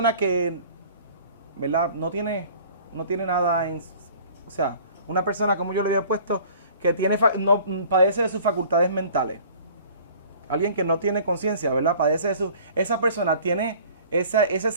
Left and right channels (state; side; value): inverted; both; correlation -0.49